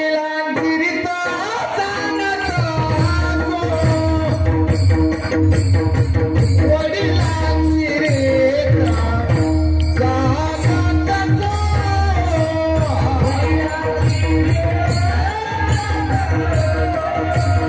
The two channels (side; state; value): both; identical; correlation 1.00